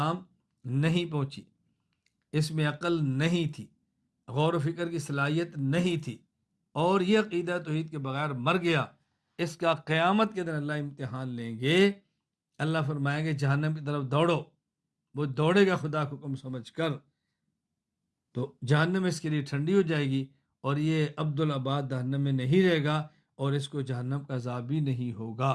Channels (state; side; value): identical; both; correlation 1.00